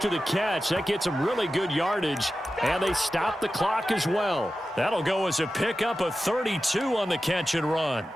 the catch. That gets him really good yardage, and they stop the clock as well. That'll go as a pickup of 32 on the catch and run.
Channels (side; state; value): both; normal; correlation 0.93